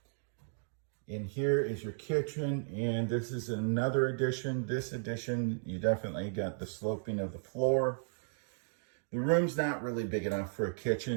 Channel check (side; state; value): left; silent; digital silence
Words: In here is your kitchen, and this is another addition. This addition, you definitely got the sloping of the floor. The room's not really big enough for a